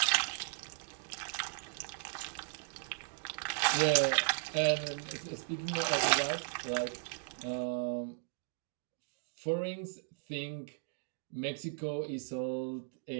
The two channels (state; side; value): silent; left; digital silence